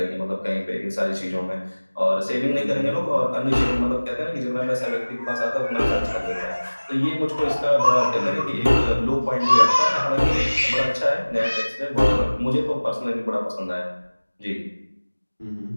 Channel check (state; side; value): inverted; both; correlation -1.00